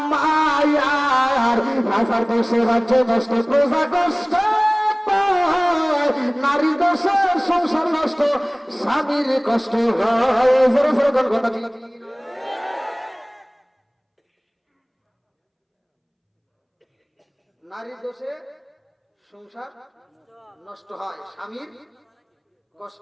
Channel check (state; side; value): identical; both; correlation 1.00